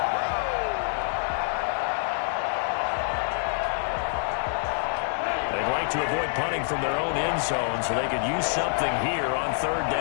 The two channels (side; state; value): right; silent; digital silence